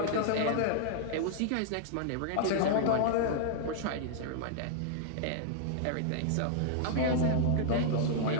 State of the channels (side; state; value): both; different; correlation -0.01